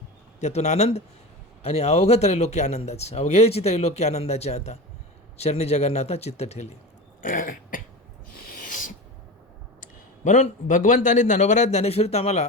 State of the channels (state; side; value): normal; both; correlation 0.27